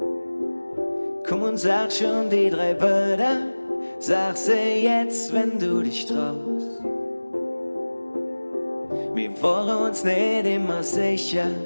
Komm und sag schon die 3 Wörter, sag sie jetzt, wenn du dich traust. Wir waren uns nicht immer sicher,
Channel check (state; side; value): inverted; both; correlation -1.00